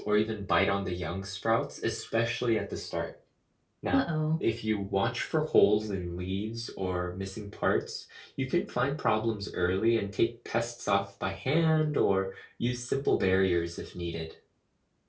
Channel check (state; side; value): identical; both; correlation 1.00